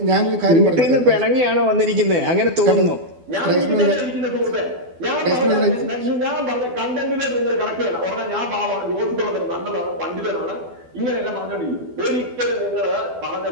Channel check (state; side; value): late; left; 12 ms